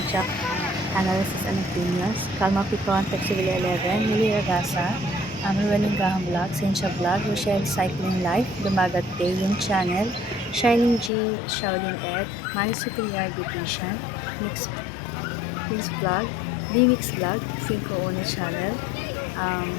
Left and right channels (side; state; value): right; drops out; at 11.1 s